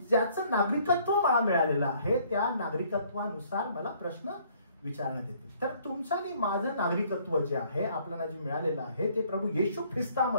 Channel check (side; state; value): both; inverted; correlation -0.62